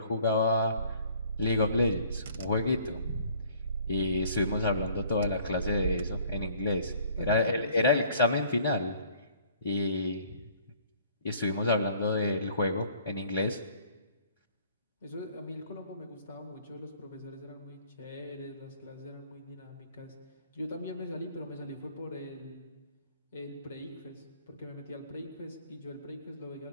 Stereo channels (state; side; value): inverted; both; correlation -0.56